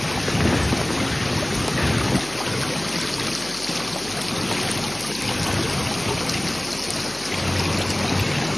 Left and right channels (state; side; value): noise; left; hum, 19 dB below the sound